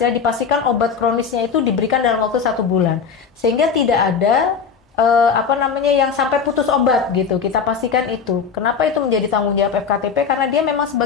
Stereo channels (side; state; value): right; quieter; 6.0 dB